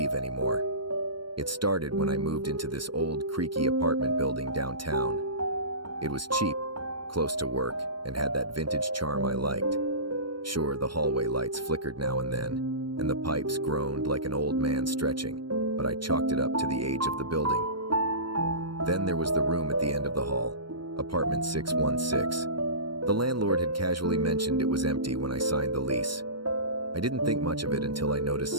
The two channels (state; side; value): late; left; 0.72 ms